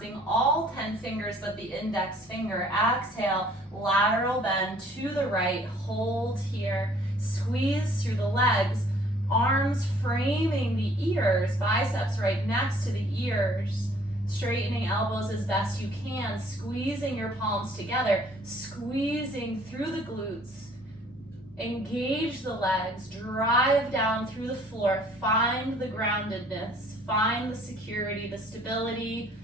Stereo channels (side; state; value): both; normal; correlation 0.57